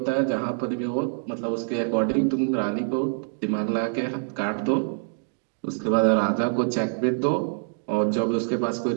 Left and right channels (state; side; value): silent; left; digital silence